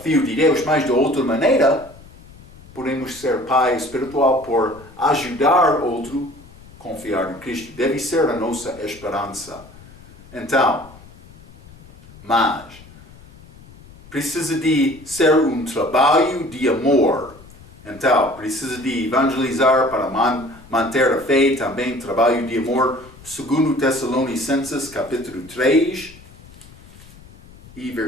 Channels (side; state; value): left; noise; rumble, 22 dB below the sound